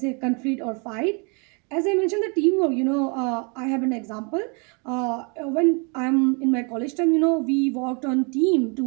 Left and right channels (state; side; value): quieter; left; 33.9 dB